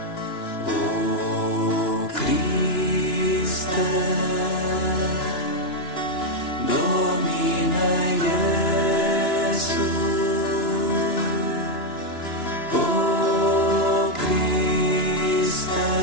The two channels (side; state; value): right; late; 2.9 ms